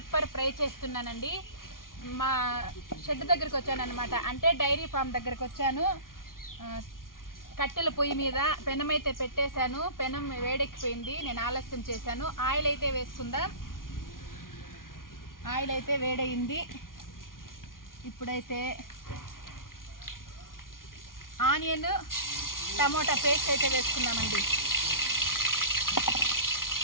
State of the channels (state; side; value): late; right; 0.90 ms